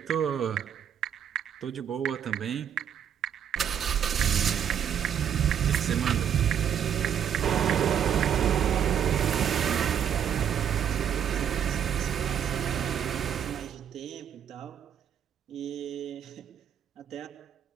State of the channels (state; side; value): quieter; left; 9.0 dB